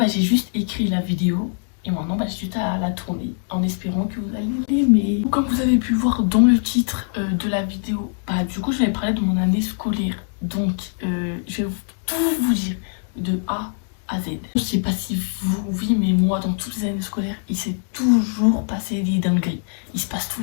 j'ai juste écrit la vidéo. Et maintenant, j'ai juste à la tourner en espérant que vous allez l'aimer. Comme vous avez pu voir dans le titre de la vidéo, du coup, je vais parler de mon année scolaire. Donc, je vais tout vous dire de A à Z. Je sais pas si vous, oui, mais moi, dans toutes les années scolaires, il s'est toujours passé des dingueries. Il se passe tous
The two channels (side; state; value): right; silent; 64 dB below the other